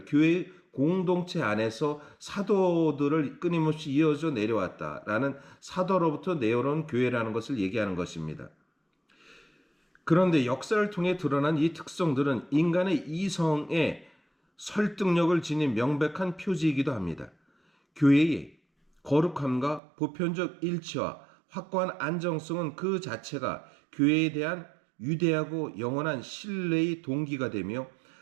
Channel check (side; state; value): left; drops out; at 19.8 s